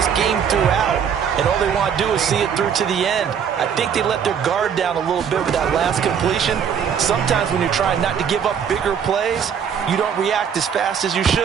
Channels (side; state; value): left; quieter; 7.7 dB